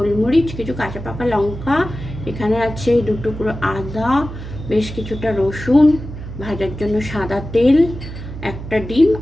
কিছু কাঁচা পাকা লঙ্কা, এখানে আছে 2 টুকরো আদা, বেশ কিছুটা রসুন, ভাজার জন্য সাদা তেল, একটা ডিম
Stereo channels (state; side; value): noise; right; hum, 10 dB below the sound